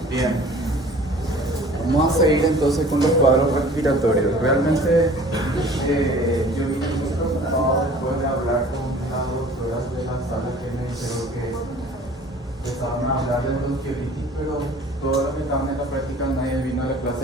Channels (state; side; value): normal; both; correlation 0.48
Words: Bien. Vamos a seguir entonces con los cuadros respiratorios. Realmente yo vine muy preocupado después de hablar con las doctoras de la sala que me dijeron que empezaban a hablar de bronquiolitis, pero todos los que estaban en la práctica nadie vino a la clase